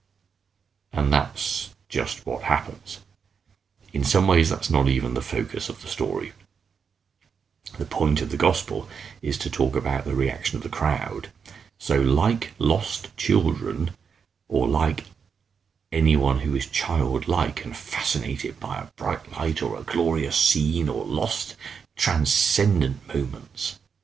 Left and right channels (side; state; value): left; quieter; 6.3 dB